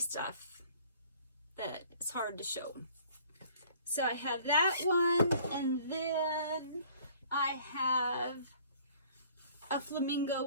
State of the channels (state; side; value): inverted; both; correlation -0.54